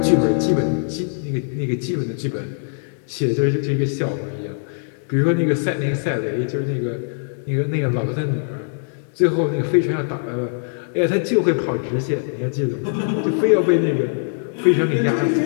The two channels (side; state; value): right; silent; digital silence